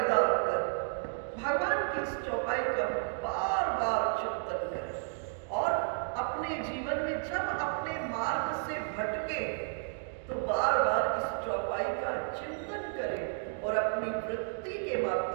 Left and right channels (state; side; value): silent; left; digital silence